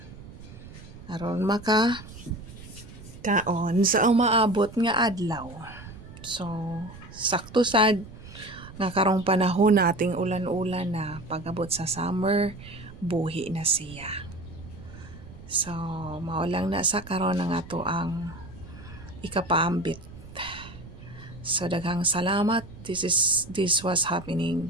Aron maka kaon sa umaabot nga adlaw. So, sakto sad nga karong panahon na ating ulan-ulan na pag-abot sa summer, buhi na siya. So, maulang na sa karon ng ato ang ikapaambit. So, daghang salamat. This was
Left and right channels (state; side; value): noise; right; rumble, 16 dB below the sound